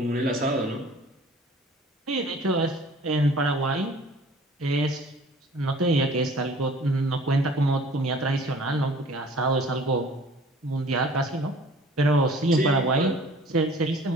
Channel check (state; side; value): normal; both; correlation 0.49